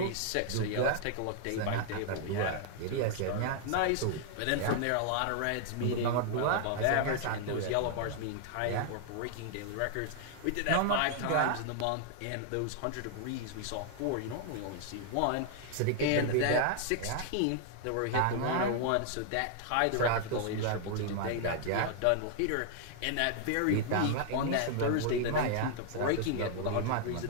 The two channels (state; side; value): different; both; correlation 0.00